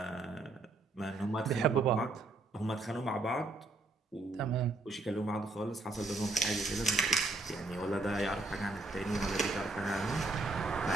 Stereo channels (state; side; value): quieter; left; 3.1 dB